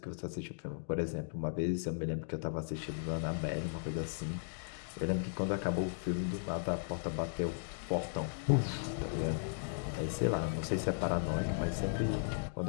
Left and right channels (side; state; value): right; silent; digital silence